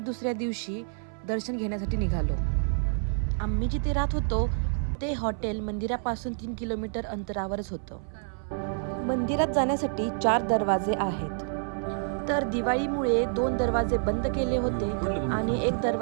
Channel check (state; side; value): silent; left; 59 dB below the other